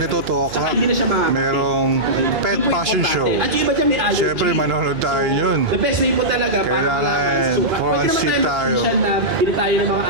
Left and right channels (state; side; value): noise; right; hum, 16 dB below the sound